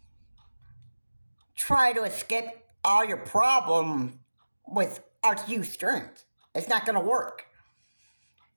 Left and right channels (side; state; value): both; inverted; correlation -1.00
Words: try to escape all your problems with RTU streams. It's not going to work.